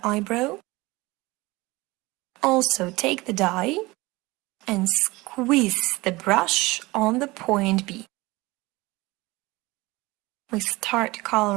eyebrow. Also, take the dye and squeeze the brush on the point B. We start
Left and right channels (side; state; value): left; quieter; 21.6 dB